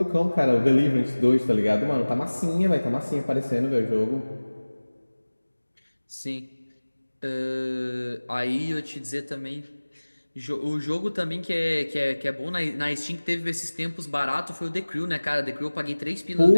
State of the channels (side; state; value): both; inverted; correlation -1.00